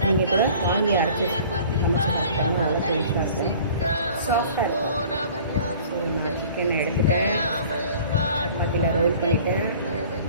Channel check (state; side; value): inverted; both; correlation -0.48